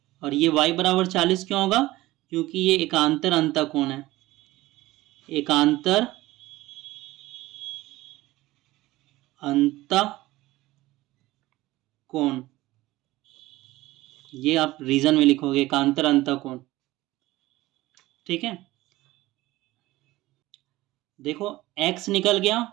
और ये y बराबर 40 क्यों होगा, क्योंकि ये एकांतर अंतःकोण है, एकांतर अंतःकोण, ये आप रीजन में लिखोगे एकांतर अंतःकोण, ठीक है। देखो x निकल गया,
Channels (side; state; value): left; quieter; 18.0 dB